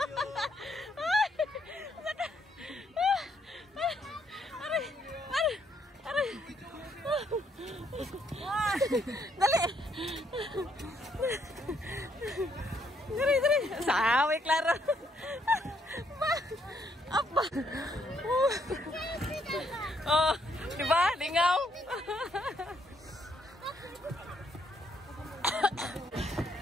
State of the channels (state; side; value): normal; both; correlation 0.72